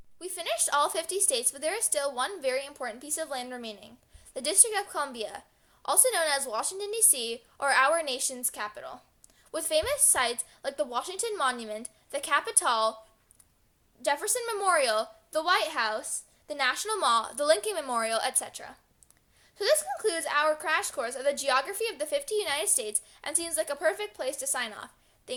We finished all 50 states, but there is still one very important piece of land remaining, the District of Columbia, also known as Washington, D.C., or our nation's capital, with famous sites like the Washington Monument, the Capitol, Jefferson Memorial, the White House, the National Mall, the Lincoln Memorial, etc. So this concludes our crash course of the geography of the 50 United States and seems like a perfect place to sign off.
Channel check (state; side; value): identical; both; correlation 1.00